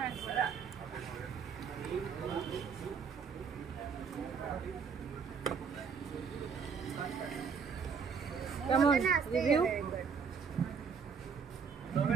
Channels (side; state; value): left; quieter; 6.1 dB